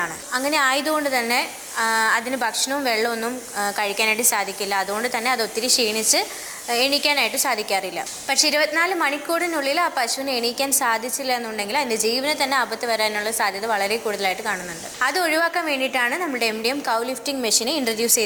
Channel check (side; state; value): both; identical; correlation 1.00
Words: അങ്ങനെ ആയതുകൊണ്ട് തന്നെ അതിന് ഭക്ഷണവും വെള്ളമൊന്നും കഴിക്കാനായിട്ട് സാധിക്കില്ല. അതുകൊണ്ട് തന്നെ അത് ഒത്തിരി ക്ഷീണിച്ച് എണീക്കാനായിട്ട് സാധിക്കാറില്ല. പക്ഷേ 24 മണിക്കൂറിനുള്ളിൽ ആ പശുവിനെ എണീക്കാൻ സാധിച്ചില്ല എന്നുണ്ടെങ്കിൽ അതിൻ്റെ ജീവന് തന്നെ ആപത്ത് വരാനുള്ള സാധ്യത വളരെ കൂടുതലായിട്ട് കാണുന്നുണ്ട്. അത് ഒഴിവാക്കാൻ വേണ്ടിയിട്ടാണ് നമ്മുടെ MDM കൗ ലിഫ്റ്റിംഗ് മെഷീനെ ഇൻട്രൊഡ്യൂസ്